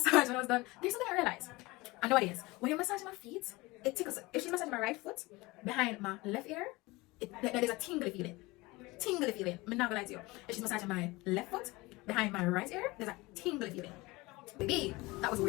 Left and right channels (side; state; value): right; quieter; 22.3 dB